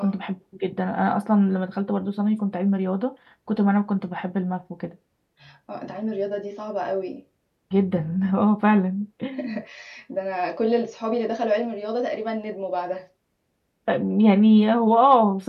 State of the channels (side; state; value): both; identical; correlation 1.00